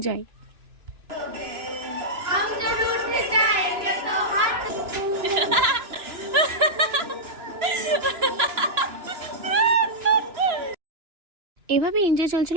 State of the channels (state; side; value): late; left; 2.9 ms